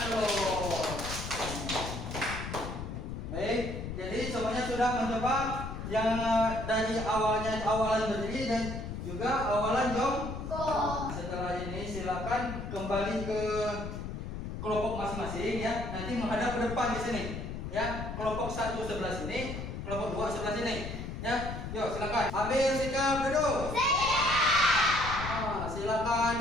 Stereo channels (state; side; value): noise; left; rumble, 6 dB below the sound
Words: dulu. Baik, jadi semuanya sudah mencoba yang dari awalan berdiri dan juga awalan jongkok. Setelah ini silakan kembali ke kelompok masing-masing ya. Nanti menghadap ke depan di sini. Ya, kelompok 1 sebelah sini, kelompok 2 sebelah sini. Ya, yuk silakan. Ambil sikap duduk. Silakan